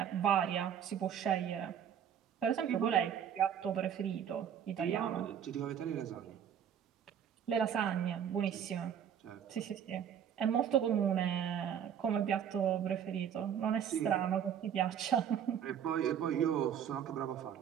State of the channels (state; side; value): quieter; left; 8.8 dB